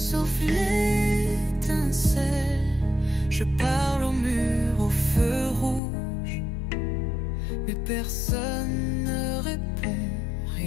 l'étincelle. Je parle au mur, au feu rouge, mais personne ne répond,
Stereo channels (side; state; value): right; drops out; at 5.8 s